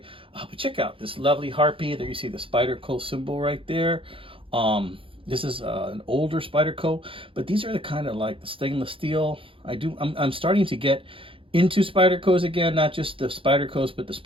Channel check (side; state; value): left; late; 0.26 ms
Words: But check out this lovely Harpy. There you see the Spyderco symbol right there. This is an older Spyderco, but these are the kind of like the stainless steel. I'm starting to get into Spydercos again, not just the Spydercos, but the